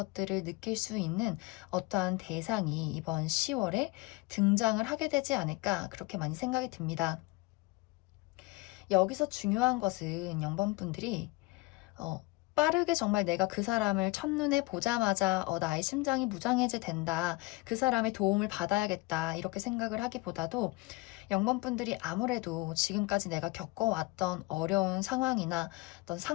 느낄 수 있는 어떠한 대상이 이번 10월에 등장을 하게 되지 않을까, 그렇게 많이 생각이 듭니다. 여기서 중요한 것은 0번분들이 빠르게 정말 내가 그 사람을 첫눈에 보자마자 나의 심장이 무장해제 된다, 그 사람의 도움을 받아야겠다, 이렇게 생각을 하기보다도 0번분들이 아무래도 지금까지 내가 겪어왔던 어려운 상황이나 어떤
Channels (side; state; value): right; quieter; 23.7 dB